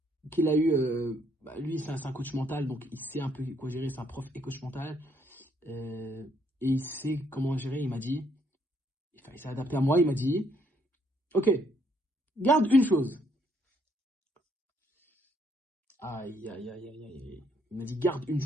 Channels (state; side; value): normal; both; correlation 0.69